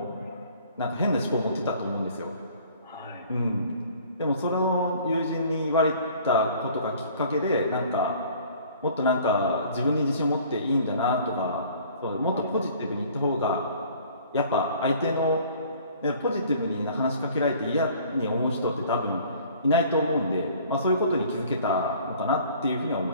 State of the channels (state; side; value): inverted; both; correlation -0.52